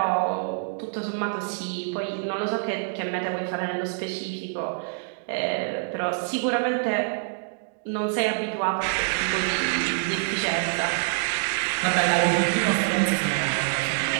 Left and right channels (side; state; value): left; silent; digital silence